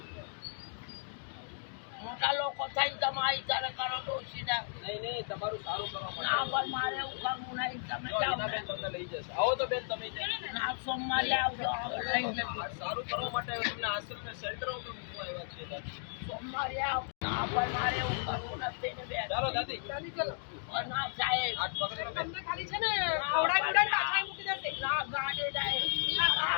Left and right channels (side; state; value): right; silent; digital silence